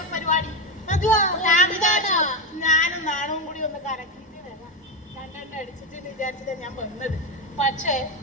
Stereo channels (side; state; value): both; normal; correlation 0.12